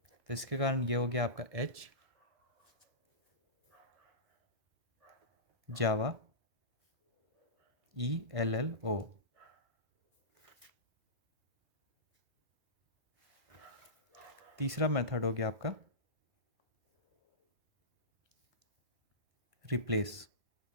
तो इसके कारण ये हो गया आपका एच जावा ELLO। तीसरा मेथड हो गया आपका रिप्लेस,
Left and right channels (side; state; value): left; late; 1.5 ms